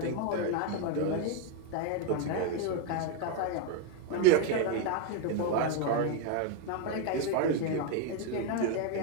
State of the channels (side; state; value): both; different; correlation 0.01